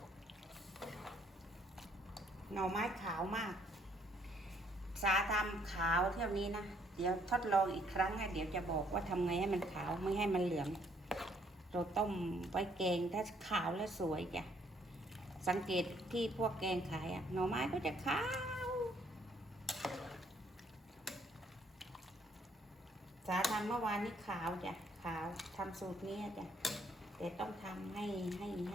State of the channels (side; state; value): both; normal; correlation 0.66